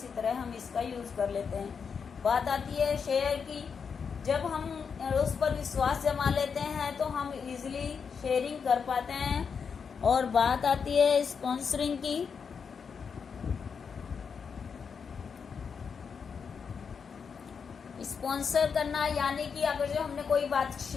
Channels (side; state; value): right; quieter; 6.2 dB